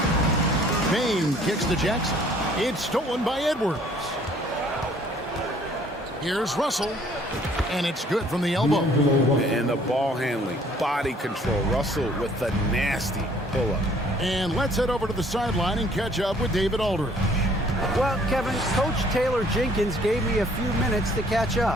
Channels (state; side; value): normal; both; correlation 0.59